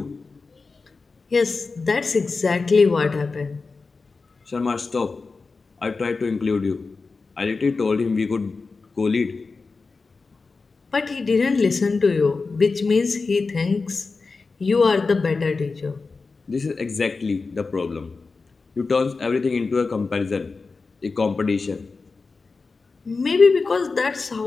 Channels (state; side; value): quieter; right; 4.2 dB